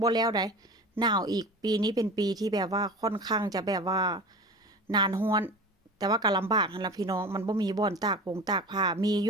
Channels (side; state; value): both; normal; correlation 0.34